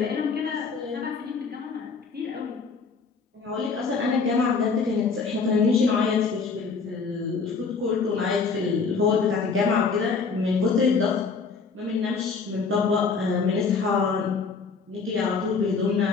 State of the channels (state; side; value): quieter; right; 5.0 dB